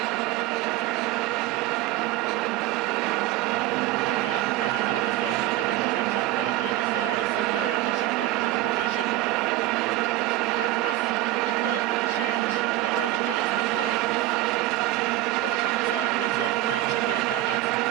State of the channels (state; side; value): quieter; left; 15.6 dB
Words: Well, the Kenya's Harambee Stars will pick up possession on the other side. Isinde dashing back to his position. At least the goal would change the way the game is being played. But the Kenyan side was marching the Ugandans